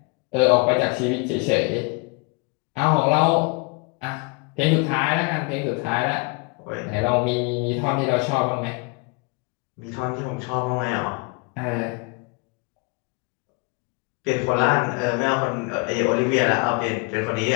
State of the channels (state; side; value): quieter; right; 30.4 dB